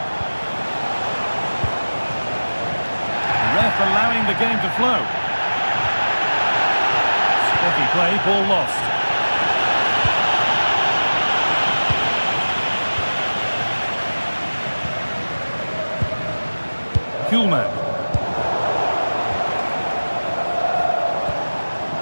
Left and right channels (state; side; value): inverted; both; correlation -1.00